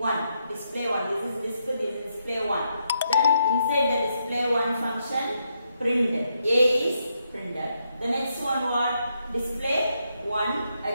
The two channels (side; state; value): both; inverted; correlation -0.80